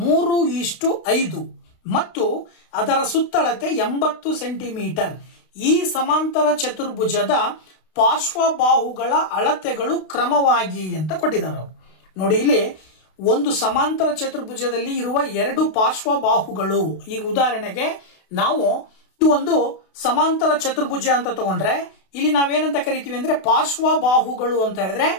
3:5 ಮತ್ತು ಅದರ ಸುತ್ತಳತೆ 80 ಸೆಂಟಿಮೀಟರ್. ಈ ಸಮಾಂತರ ಚತುರ್ಭುಜದ ಪಾರ್ಶ್ವಬಾಹುಗಳ ಅಳತೆಗಳು ಕ್ರಮವಾಗಿ ಅಂತ ಕೊಟ್ಟಿದ್ದಾರೆ ಅವರು. ನೋಡಿ, ಇಲ್ಲಿ ಒಂದು ಸಮಾಂತರ ಚತುರ್ಭುಜದಲ್ಲಿ ಇರುವ ಎರಡು ಪಾರ್ಶ್ವಬಾಹುಗಳು, ಈಗ ಉದಾಹರಣೆಗೆ ನಾವು ಇದು ಒಂದು ಸಮಾಂತರ ಚತುರ್ಭುಜ ಅಂತ ತಗೊಂಡ್ರೆ ಇಲ್ಲಿ ನಾವೇನಂತ ಕರಿತೀವಿ ಅಂದ್ರೆ ಪಾರ್ಶ್ವಬಾಹುಗಳು ಅಂತ ಹೇಳಿದ್ರೆ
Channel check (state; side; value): late; right; 32 ms